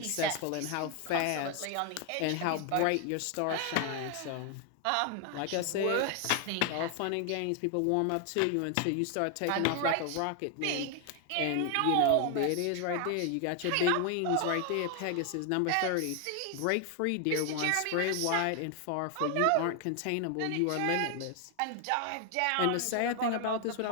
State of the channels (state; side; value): different; both; correlation 0.00